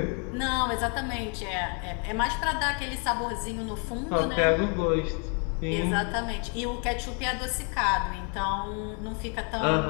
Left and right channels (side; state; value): right; quieter; 38.0 dB